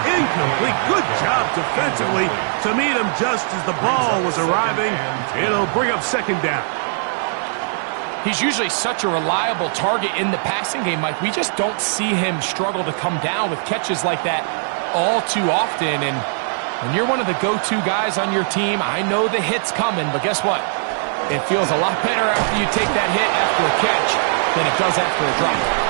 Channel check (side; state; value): left; silent; 59 dB below the other